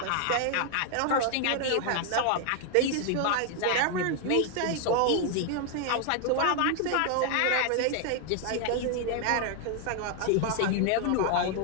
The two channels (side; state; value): both; different; correlation 0.00